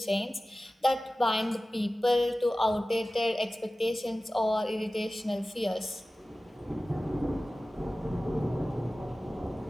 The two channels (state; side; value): normal; both; correlation 0.96